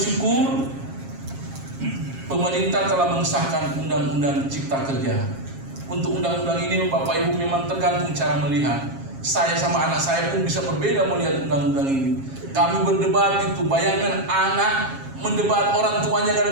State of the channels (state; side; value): late; left; 7.4 ms